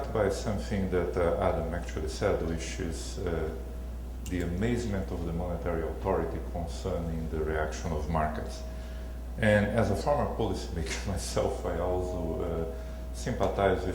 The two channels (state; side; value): identical; both; correlation 1.00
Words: by something that Adam actually said, which is the amazement of the monetary authority concerning the reaction of markets. And as a former policymaker myself, I also sympathize